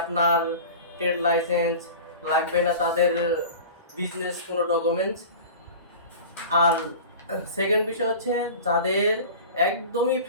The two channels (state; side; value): inverted; both; correlation -0.36